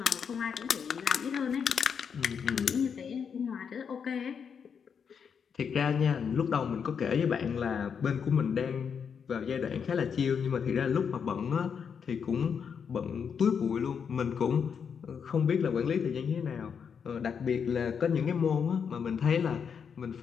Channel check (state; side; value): quieter; right; 6.8 dB